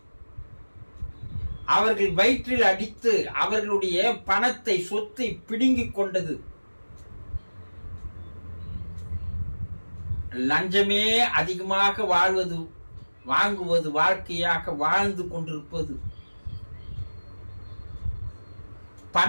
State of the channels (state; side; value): inverted; both; correlation -1.00